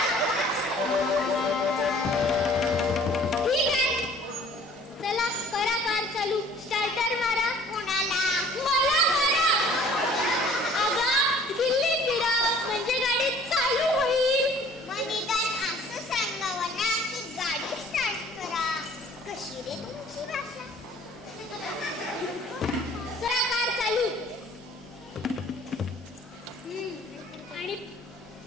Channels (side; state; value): both; normal; correlation 0.52